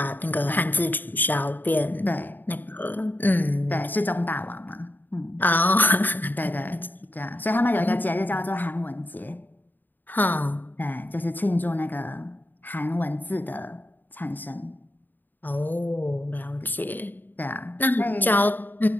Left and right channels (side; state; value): right; late; 0.089 ms